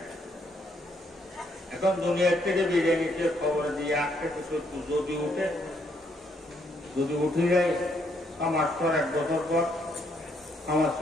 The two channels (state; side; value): normal; both; correlation 0.72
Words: এখন দুনিয়ার থেকে বিরিয়ানিতে খবর দিয়ে আসতে কিছু যদি উঠে যায় আমার পর 1 বছর পর আমার